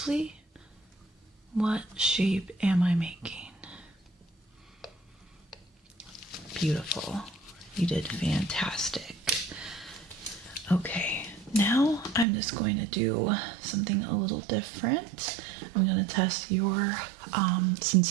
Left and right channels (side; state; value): left; drops out; at 12.2 s